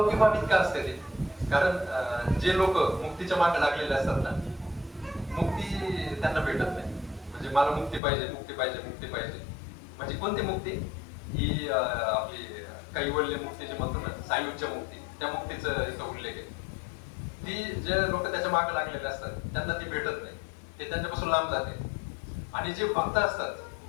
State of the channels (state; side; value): drops out; right; at 8.0 s